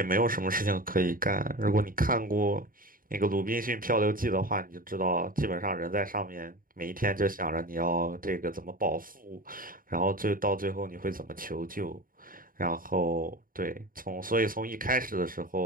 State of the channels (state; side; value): late; left; 0.41 ms